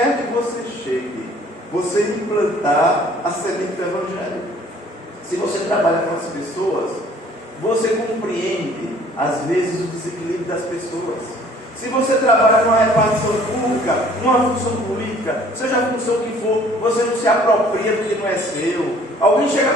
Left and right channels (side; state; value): both; normal; correlation 0.55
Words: que você chegue, você implantar a semente do Evangelho. Se você trabalha com as pessoas, você compreende, às vezes, o desequilíbrio das pessoas. Se você trabalha numa repartição pública, numa função política, seja a função que for, você não se apropria do que não é seu. Alguém chega